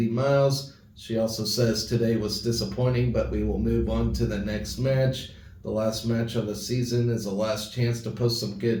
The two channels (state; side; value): identical; both; correlation 1.00